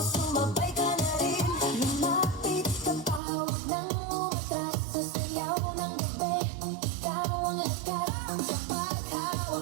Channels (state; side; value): drops out; left; at 3.2 s